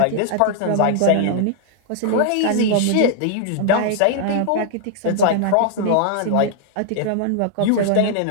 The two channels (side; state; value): both; different; correlation -0.01